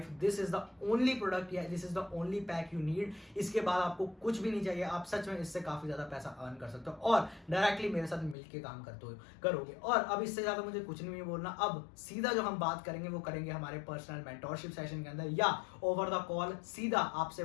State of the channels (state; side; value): drops out; right; at 8.3 s